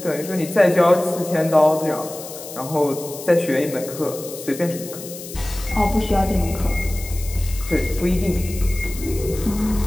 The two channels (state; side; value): noise; left; hiss, 13 dB below the sound